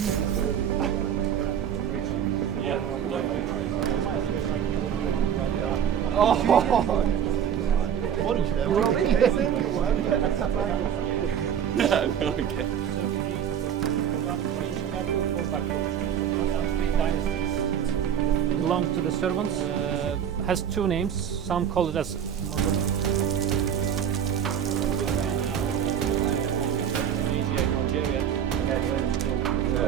Belong to the servants. Has two names. Some call it as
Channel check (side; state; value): left; quieter; 8.8 dB